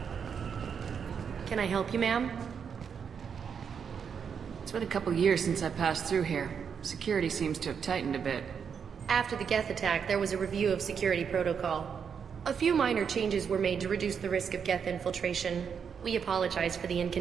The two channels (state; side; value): quieter; left; 6.9 dB